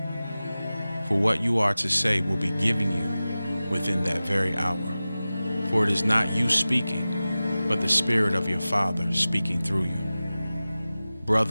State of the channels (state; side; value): inverted; both; correlation -0.96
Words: for what you are to say will be given you within that very hour. For it is not you speaking, but the Spirit of your Father speaking through you.